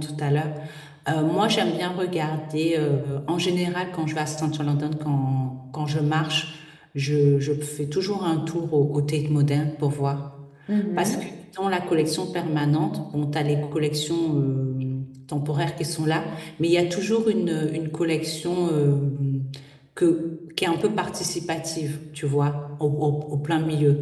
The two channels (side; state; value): both; identical; correlation 1.00